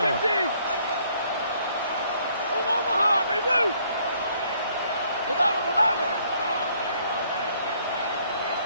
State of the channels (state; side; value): inverted; both; correlation -0.65